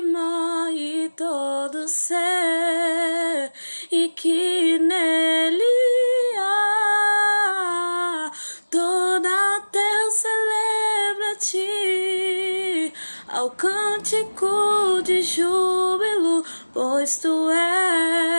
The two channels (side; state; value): both; inverted; correlation -1.00